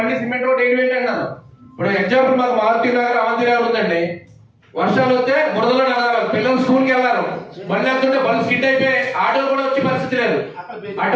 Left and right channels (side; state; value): both; identical; correlation 1.00